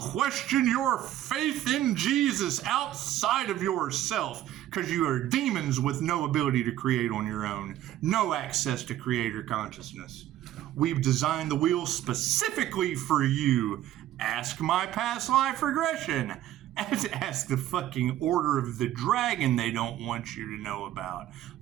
your faith in Jesus outside of yourself, because you are demons with no ability to create on your own, no access to creator consciousness. We've designed the wheel specifically for you. Ask my past life regression. Ask the fucking Order of the Dragon they don't want you to know about.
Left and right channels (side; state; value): left; quieter; 13.0 dB